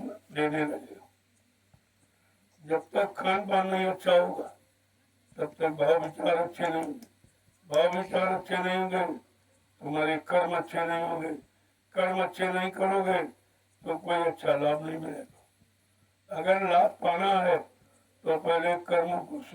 देने लगे। जब तक खान पान नहीं अच्छा होगा तब तक भाव विचार अच्छे नहीं होंगे, भाव विचार अच्छे नहीं होंगे तुम्हारे कर्म अच्छे नहीं होंगे, कर्म अच्छे नहीं करोगे तो कोई अच्छा लाभ नहीं मिलेगा। अगर लाभ पाना है तो पहले कर्म को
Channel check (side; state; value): both; identical; correlation 1.00